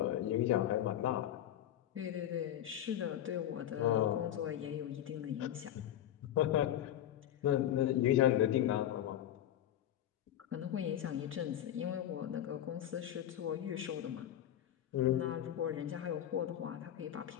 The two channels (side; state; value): right; quieter; 11.6 dB